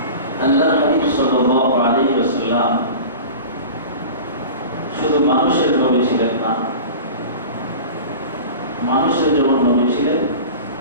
আল্লাহর হাবিব সাল্লাল্লাহু আলাইহি ওয়াসাল্লাম শুধু মানুষের নবী ছিলেন না, মানুষের যেমন নবী ছিলেন,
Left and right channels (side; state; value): both; inverted; correlation -0.36